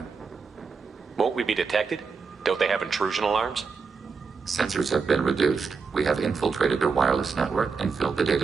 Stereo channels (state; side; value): quieter; left; 5.1 dB